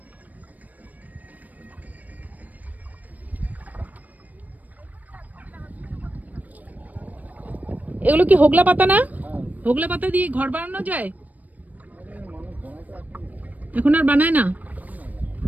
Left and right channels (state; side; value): late; left; 0.078 ms